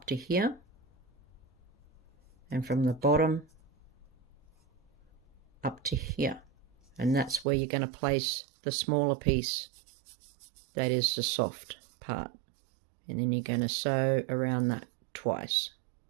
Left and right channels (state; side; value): drops out; left; at 7.5 s